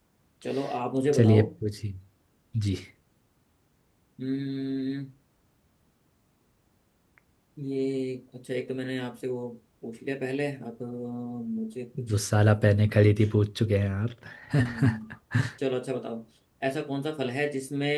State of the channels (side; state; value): both; identical; correlation 1.00